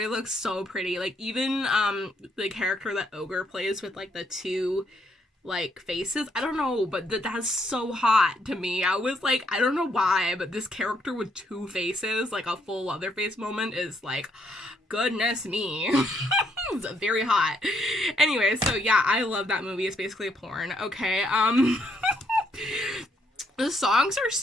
looks so pretty. Like, even the character that Ogre plays with, like, the two, like, faces. I don't know, but that's so hot to me. I was like, I don't know why, but this character with two faces, like a full Leatherface moment, is like, goodness me. It's very hot. Anyway, so yeah, I love that movie. It's basically a porn. Okay, the songs are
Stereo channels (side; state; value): both; normal; correlation 0.73